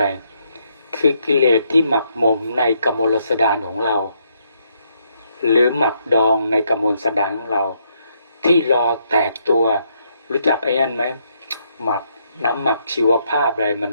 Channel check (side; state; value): both; inverted; correlation -0.75